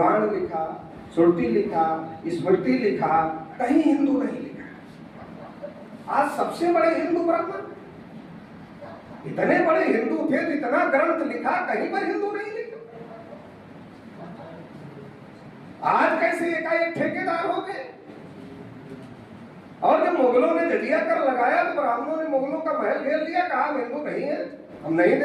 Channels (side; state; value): both; identical; correlation 1.00